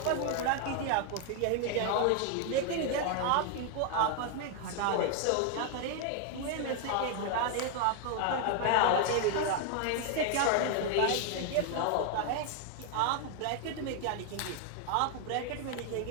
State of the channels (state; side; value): different; both; correlation 0.00